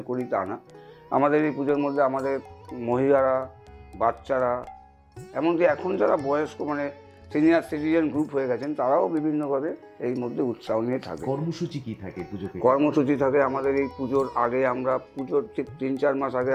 করি তা না, আমাদের এই পুজোর মধ্যে আমাদের মহিলারা, বাচ্চারা, এমনকি এখন যারা বয়স্ক মানে সিনিয়র সিটিজেন গ্রুপ হয়ে গেছেন, তারাও বিভিন্নভাবে এই মধ্যে উৎসাহ নিয়ে থাকে। কর্মসূচি কি থাকে পুজোতে? কর্মসূচি থাকে আমাদের এই পুজোর আগে, আমরা পুজোর ঠিক 3-4 মাস আগে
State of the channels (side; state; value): both; identical; correlation 1.00